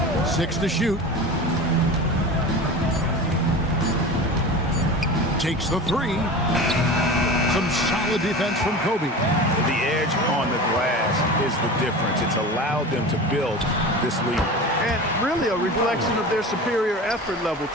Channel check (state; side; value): normal; both; correlation 0.32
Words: 6 to shoot. Takes the 3. Some solid defense from Kobe. The edge on the glass is the difference. It's allowed them to build this lead. And really a reflection of their superior effort level